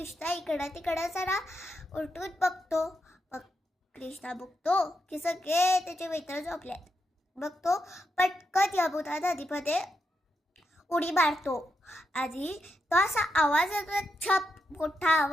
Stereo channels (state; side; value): normal; both; correlation 0.84